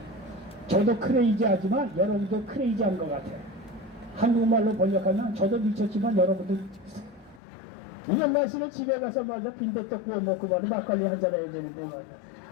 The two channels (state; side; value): drops out; right; at 7.4 s